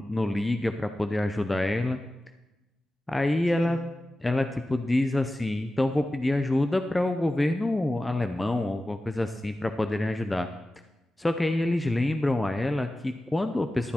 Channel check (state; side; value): normal; both; correlation 0.94